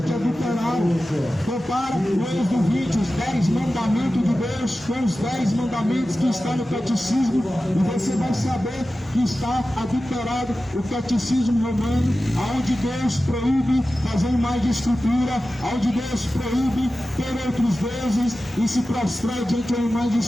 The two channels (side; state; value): both; normal; correlation 0.94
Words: é adulterado. Compara o Êxodo 20, os 10 mandamentos de Deus com os 10 mandamentos que estão no catecismo, e você vai saber que está adulterado o catecismo romano, onde Deus proíbe fazer imagem de escultura, onde Deus proíbe ter outros deuses e se prostrar diante da imagem de